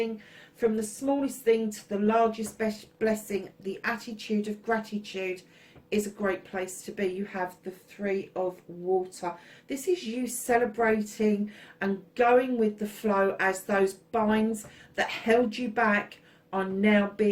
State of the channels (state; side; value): identical; both; correlation 1.00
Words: from the smallest thing to the largest blessing. The attitude of gratitude is a great place to be. You have the 3 of water. This is you celebrating and going with the flow as those binds that held you back are now